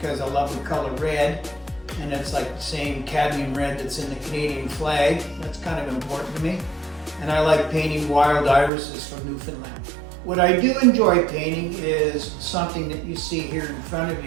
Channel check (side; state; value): left; drops out; at 8.7 s